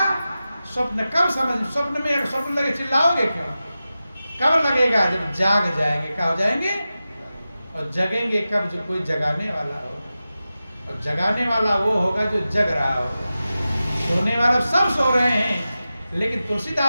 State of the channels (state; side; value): inverted; both; correlation -0.94